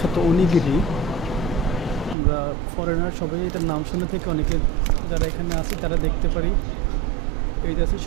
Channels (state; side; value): drops out; left; at 2.1 s